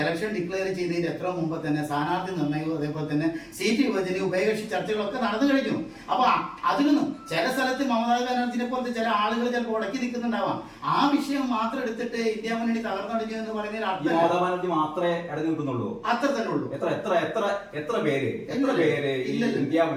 ഇലക്ഷൻ ഡിക്ലെയർ ചെയ്തതിന് എത്ര മുമ്പ് തന്നെ സ്ഥാനാർത്ഥി നിർണയവും അതേപോലെ തന്നെ സീറ്റ് വിഭജനവും ഉഭയകക്ഷി ചർച്ചകളൊക്കെ നടന്നു കഴിഞ്ഞു. അപ്പൊ അതിലൊന്നും ചില സ്ഥലത്ത് മമതാ ബാനർജിനെ പോലത്തെ ചില ആളുകൾ ചിലപ്പോൾ ഉടക്കി നിൽക്കുന്നുണ്ടാവാം. ആ വിഷയം മാത്രം എടുത്തിട്ട് ഇന്ത്യ മുന്നണി തകർന്നടിഞ്ഞു എന്ന് മമതാ ബാനർജി മാത്രമേ ഇടഞ്ഞു നിൽക്കുന്നുള്ളൂ. അത്ര തന്നെ ഉള്ളൂ. എത്ര പേര് ഇന്ത്യ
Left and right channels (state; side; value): identical; both; correlation 1.00